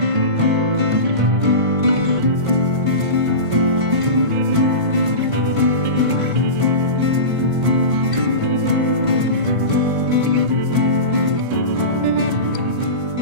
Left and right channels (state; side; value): late; left; 1.5 ms